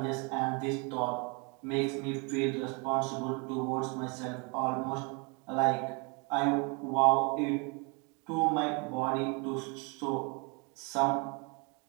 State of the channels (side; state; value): left; quieter; 32.4 dB